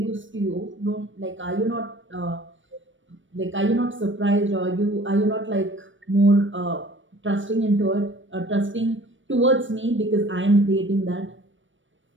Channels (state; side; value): late; left; 0.56 ms